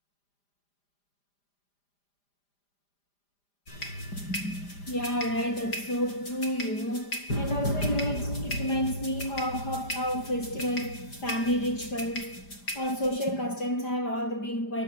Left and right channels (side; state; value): right; late; 5.0 ms